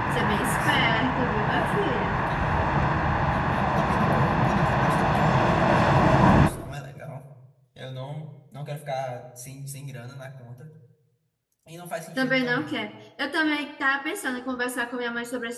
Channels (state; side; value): identical; both; correlation 1.00